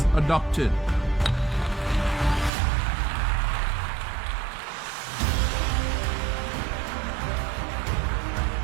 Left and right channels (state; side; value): drops out; left; at 2.5 s